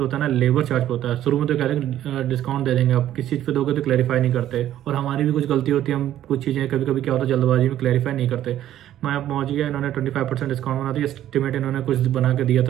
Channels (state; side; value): quieter; left; 12.3 dB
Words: होता है ना, लेबर चार्ज होता है। शुरू में तो कहते हैं डिस्काउंट दे देंगे, आप किस चीज़ पे दोगे तो क्लैरिफाई नहीं करते, और हमारी भी कुछ गलती होती है, हम कुछ चीज़ें कभी कभी क्या होता है जल्दबाजी में क्लैरिफाई नहीं करते। मैं अब पहुँच गया, इन्होंने 25% डिस्काउंट बना दिया। एस्टिमेट इन्होंने कुछ बना के दिया